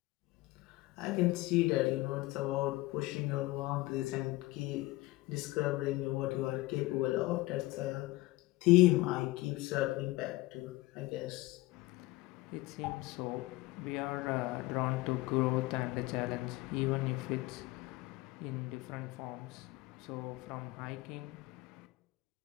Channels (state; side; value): quieter; right; 20.0 dB